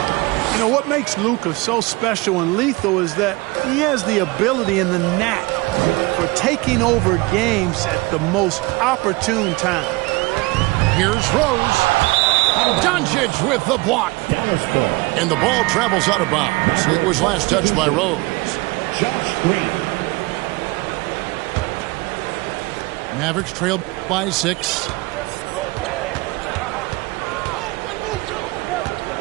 You know, what makes Luka so special and lethal is that he has the ability and the knack for taking over games at the most opportune time. Here's Rose. Doncic with the block. And the ball travels out of bounds. It was last touched by Rose. Josh Green. Mavericks trailed by 6.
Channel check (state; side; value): quieter; left; 23.6 dB